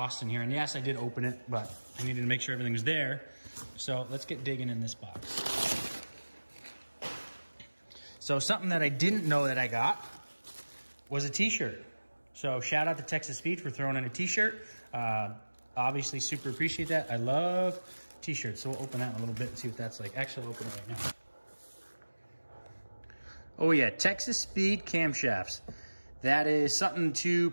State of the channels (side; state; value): both; inverted; correlation -1.00